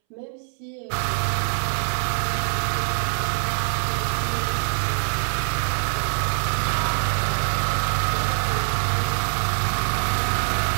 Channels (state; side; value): silent; left; 63 dB below the other